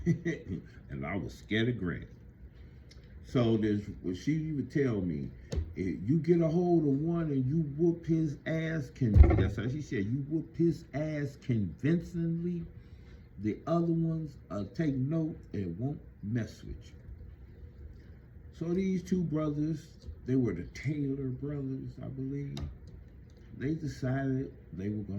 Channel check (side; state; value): both; identical; correlation 1.00